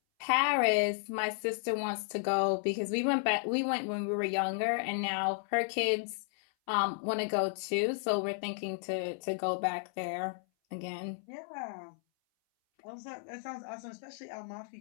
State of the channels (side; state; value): right; silent; 56 dB below the other